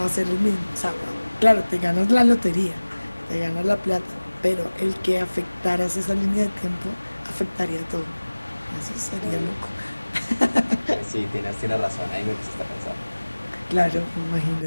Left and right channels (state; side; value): inverted; both; correlation -1.00